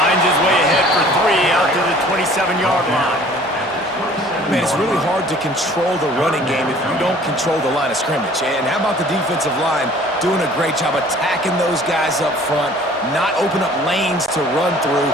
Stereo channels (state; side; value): normal; both; correlation 0.51